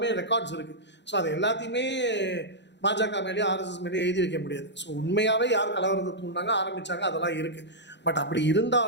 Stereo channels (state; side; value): late; right; 0.52 ms